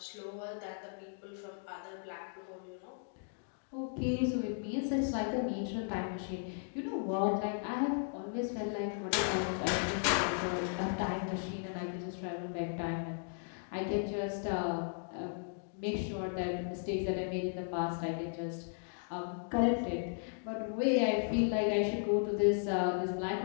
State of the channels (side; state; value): right; silent; digital silence